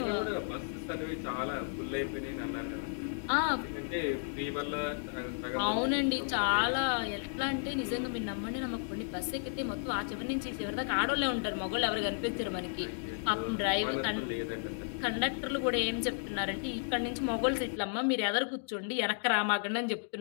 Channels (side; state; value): right; silent; digital silence